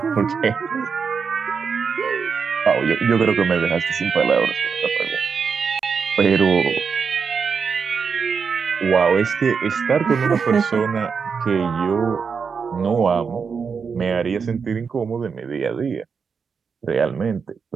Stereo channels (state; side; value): quieter; left; 5.8 dB